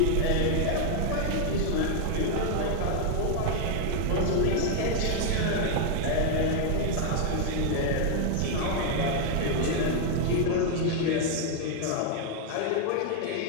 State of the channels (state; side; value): different; both; correlation 0.00